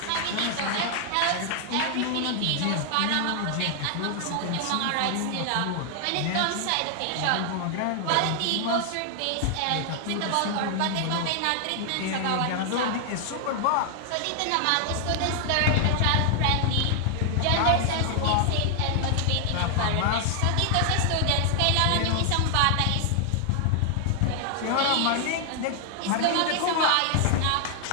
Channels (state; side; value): different; both; correlation 0.00